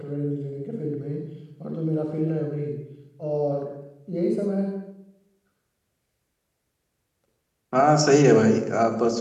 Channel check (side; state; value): both; identical; correlation 1.00